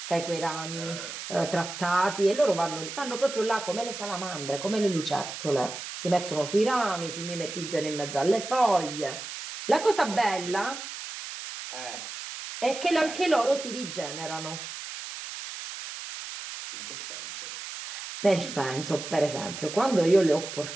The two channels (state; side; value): noise; right; hiss, 9 dB below the sound